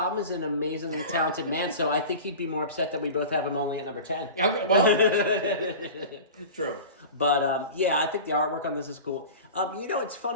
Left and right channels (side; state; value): both; inverted; correlation -0.34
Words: an amazingly talented man, so I think he'd be more upset that we both have him only at number 10. Okay, well, true. But, yeah, I think the artwork on this is cool. It's